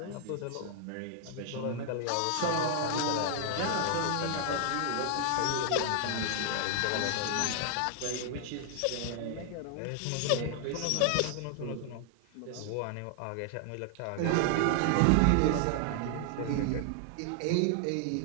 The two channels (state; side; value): different; both; correlation 0.00